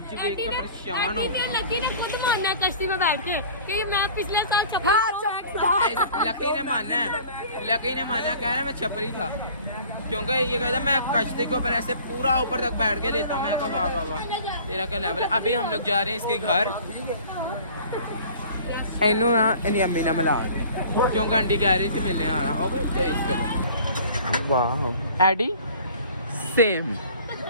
देख कर परेशान हो गया। लकी ने खुद मानना है कश्ती में बैठ के कि मैं पिछले साल लकी ने माना कह रहा मैं छपरी था क्योंकि ये कहता मैं कश्ती के ऊपर ऐसे पूरा ऊपर तक बैठ के लेता हूँ। मैं कहा वाह वाह वाह तेरा क्या लेवल है। अभी हम लोग जा रहे हैं इसके घर इनू ना इनकी अम्मी ने मिला क्योंकि आंटी कह रही थी मिलने आना वाह एडी सेम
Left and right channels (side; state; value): both; inverted; correlation -0.47